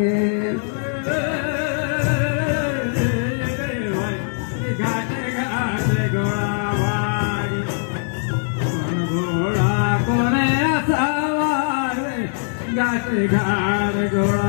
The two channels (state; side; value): silent; right; digital silence